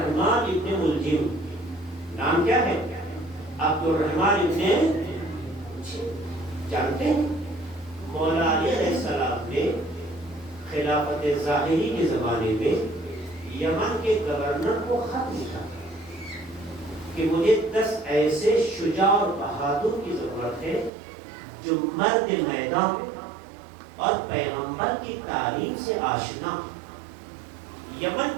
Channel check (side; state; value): left; drops out; at 20.9 s